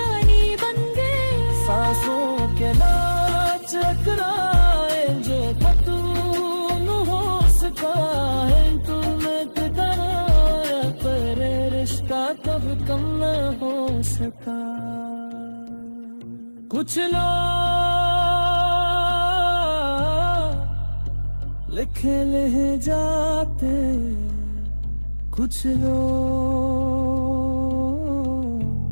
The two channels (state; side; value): inverted; both; correlation -1.00